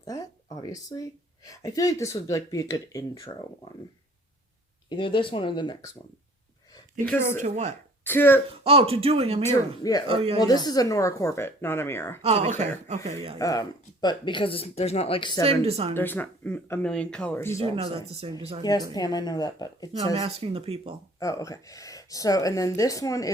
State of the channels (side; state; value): both; normal; correlation 0.53